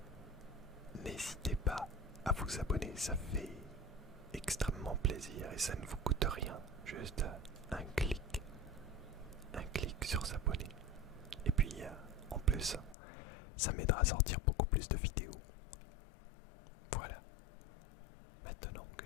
n'hésitez pas à vous abonner, ça fait extrêmement plaisir et ça ne vous coûte rien, juste un clic sur s'abonner. Et puis en plus, ça m'aidera à sortir beaucoup plus de vidéos. Voilà, maintenant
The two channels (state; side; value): drops out; right; at 13.0 s